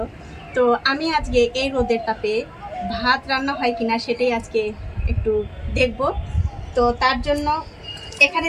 তো আমি আজকে এই রোদের তাপে ভাত রান্না হয় কিনা সেটাই আজকে একটু দেখব। তো তার জন্য এখানে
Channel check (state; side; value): identical; both; correlation 1.00